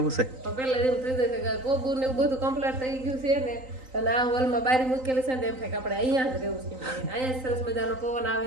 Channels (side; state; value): left; late; 3.9 ms